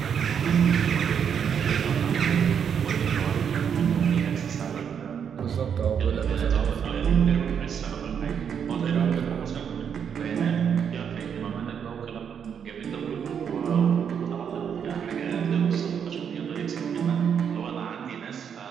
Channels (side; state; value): left; quieter; 7.7 dB